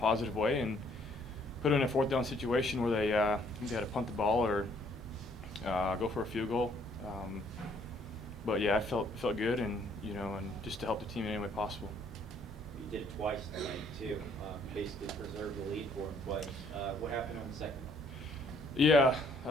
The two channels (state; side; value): normal; both; correlation 0.64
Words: way and put it in a fourth down situation where they had to punt the ball or go for a field goal. But yeah, I felt good, and and just to help the team in any way possible. You did it twice tonight too. Basically preserved the lead for him twice. What happened on the second one? Yeah,